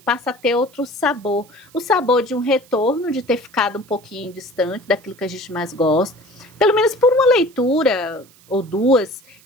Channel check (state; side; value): noise; right; hiss, 27 dB below the sound